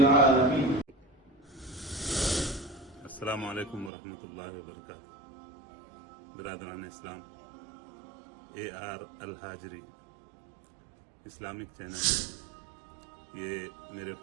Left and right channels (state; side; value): drops out; left; at 3.9 s